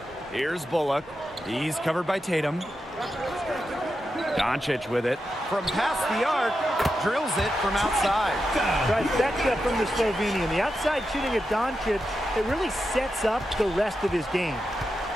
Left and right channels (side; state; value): both; normal; correlation 0.88